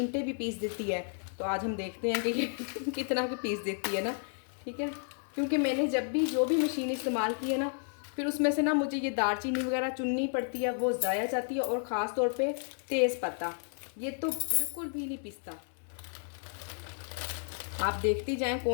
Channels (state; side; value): silent; right; 56 dB below the other